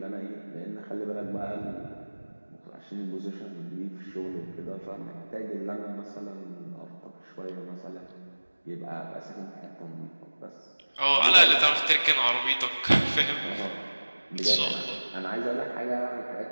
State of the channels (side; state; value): both; inverted; correlation -1.00